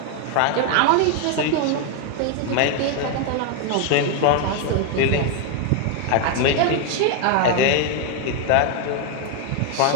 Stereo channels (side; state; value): both; different; correlation 0.01